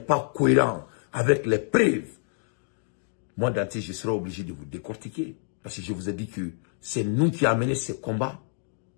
cohérent avec les preuves, moi, Dante, je serai obligé de vous décortiquer. Parce que je vous ai dit que c'est nous qui avons mené ces combats,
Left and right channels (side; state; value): right; silent; digital silence